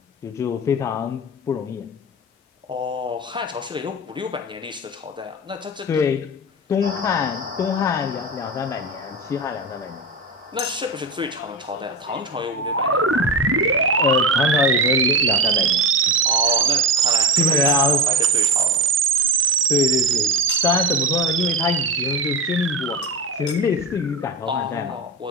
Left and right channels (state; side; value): normal; both; correlation 0.19